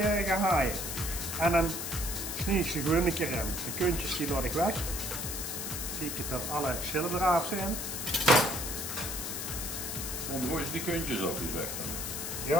gehaaien. En dan snij ik ze gewoon een keer in. De kuntjes die laat ik weg. Kijk dat alle schillen eraf zijn. Dan gooi je die kuntjes op die weg.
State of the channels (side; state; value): left; noise; hiss, 4 dB below the sound